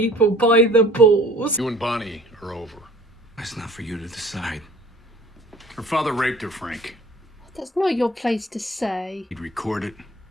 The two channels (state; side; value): normal; both; correlation 0.49